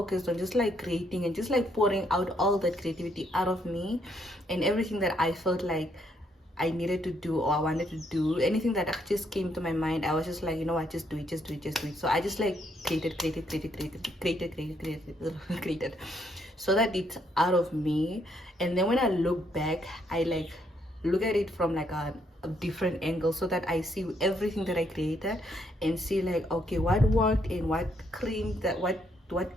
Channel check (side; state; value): both; normal; correlation 0.72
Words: on just like creating and just like pouring out all that creativity out of me, and everything that I felt like I needed to do or I wanted to do, anything that just came to my mind, I was just like, you know what, just do it, just do it, just do it. So I just like created so that it's out of me. And then when I look back, I like look at it from like a a different angle so that I see everything that I created and see like, okay, what worked and what cringed, what